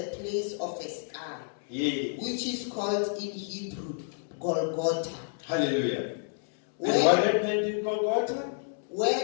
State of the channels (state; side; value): silent; right; digital silence